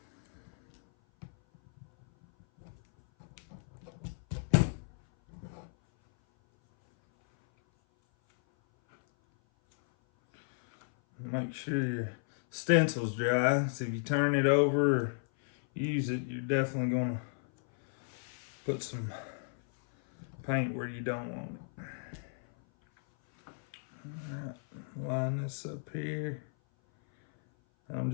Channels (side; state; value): right; silent; 55 dB below the other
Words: Make sure your stencil's dry. So if you turn it over or use it, you're definitely going to put some paint where you don't want it. Alright, line this up here. I'm